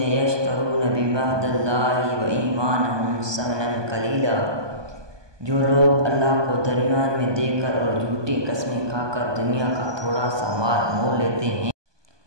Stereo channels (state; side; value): late; left; 1.2 ms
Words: یشترون بعہد اللہ وایمانہم ثمنا قلیلا۔ جو لوگ اللہ کو درمیان میں دے کر اور جھوٹی قسمیں کھا کر دنیا کا تھوڑا سا مال مول لیتے ہیں،